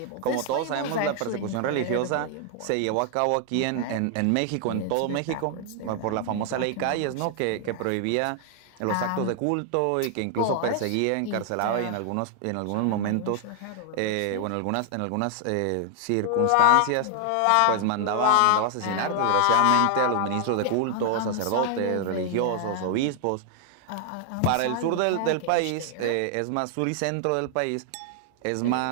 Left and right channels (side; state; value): both; different; correlation 0.00